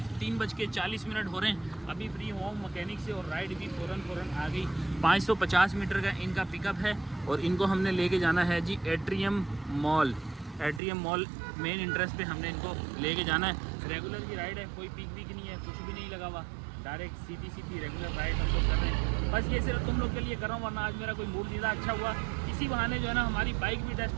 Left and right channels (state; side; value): drops out; left; at 10.8 s